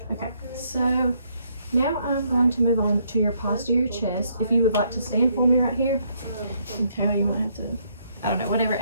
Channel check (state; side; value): inverted; both; correlation -0.71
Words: Okay, so now I'm going to move on to your posterior chest. If you would like to stand for me right here, and Tara, you might have to, I don't know, whatever